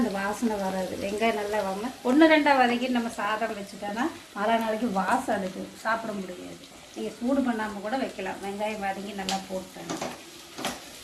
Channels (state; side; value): identical; both; correlation 1.00